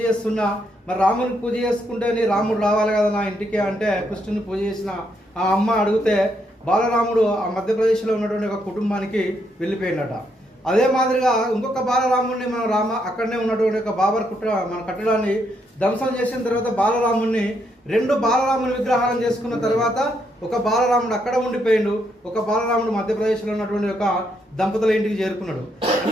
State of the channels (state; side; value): normal; both; correlation 0.76